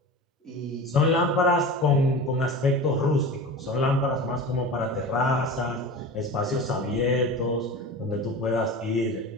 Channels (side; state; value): both; normal; correlation 0.32